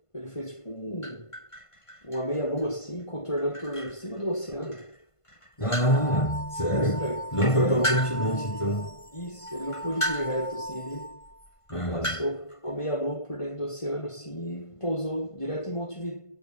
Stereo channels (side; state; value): right; late; 1.5 ms